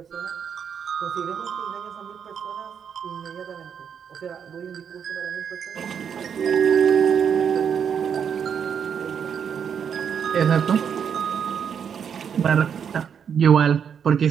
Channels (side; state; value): left; quieter; 7.6 dB